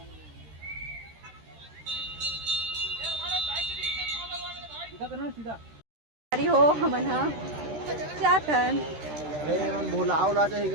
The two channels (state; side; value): late; left; 13 ms